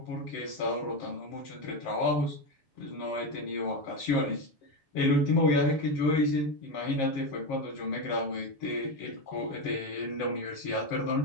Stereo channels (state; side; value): late; right; 7.4 ms